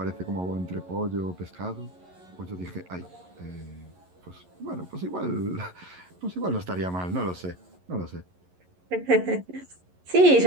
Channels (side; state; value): left; late; 11 ms